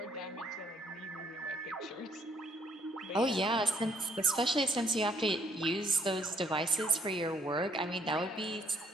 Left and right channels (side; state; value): both; normal; correlation 0.66